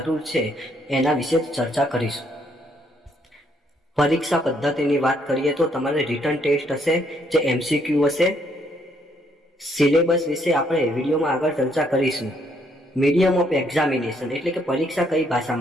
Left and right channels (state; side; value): normal; both; correlation 0.70